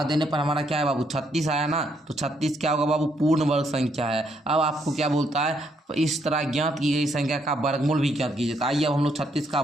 देने पर हमारा क्या है बाबू 36 आया ना। तो 36 क्या होगा बाबू, पूर्ण वर्ग संख्या है। अब आपको क्या बोलता है, इस तरह ज्ञात की गई संख्या का वर्गमूल भी ज्ञात कीजिए। तो आइए अब हम लोग 36 का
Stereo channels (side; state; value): both; normal; correlation 0.73